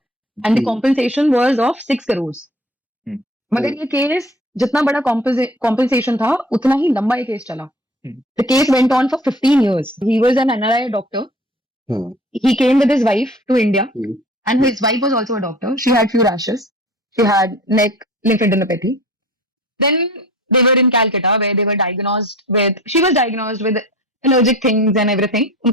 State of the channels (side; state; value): both; normal; correlation 0.44